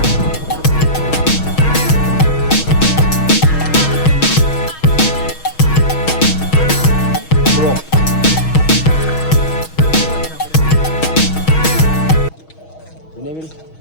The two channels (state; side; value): late; right; 6.3 ms